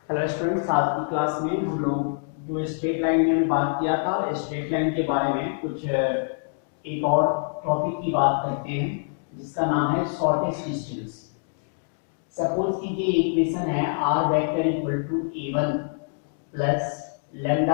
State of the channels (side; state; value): right; silent; digital silence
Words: Hello students, आज की class में हम लोग जो स्ट्रेट लाइन में बात किया था, स्ट्रेट लाइन के बारे में कुछ एक और टॉपिक की बात करते हैं जिसका नाम है शॉर्टेस्ट डिस्टेंस। सपोज कीजिए इक्वेशन है r vector equal to a1 plus